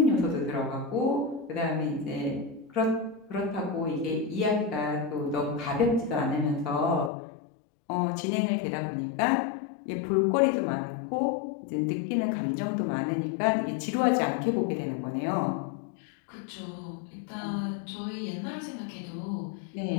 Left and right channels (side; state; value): right; drops out; at 7.1 s